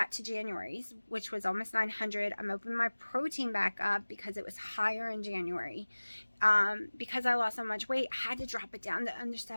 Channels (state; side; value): inverted; both; correlation -1.00